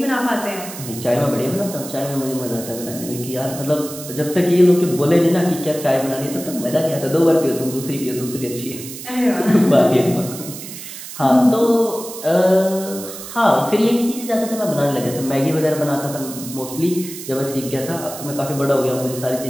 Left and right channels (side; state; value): right; noise; hiss, 11 dB below the sound